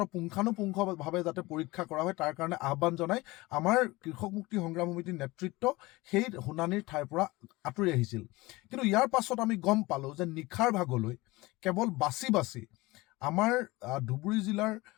পুংখানুপুংখভাৱে যাতে পৰীক্ষা কৰা হয় তাৰ কাৰণে আহ্বান জনাই আমাৰ কৃষক মুক্তি সংগ্ৰাম সমিতিৰ নেতৃত্ব সেই শুনানিৰ ঠাইৰ পৰা আঁতৰি আহিছিল। কিন্তু ইয়াৰ পাছত আমি গম পালোঁ যে নিশাৰ ভাগলৈ কেৱল বাছি বাছি আমাৰ ধুবুৰী জিলাৰ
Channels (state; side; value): quieter; right; 21.2 dB